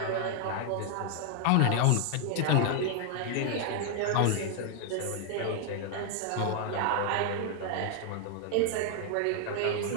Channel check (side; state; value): both; different; correlation 0.00